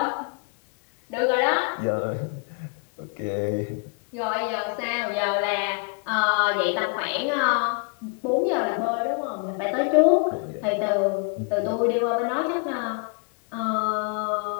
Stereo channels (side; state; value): right; quieter; 38.0 dB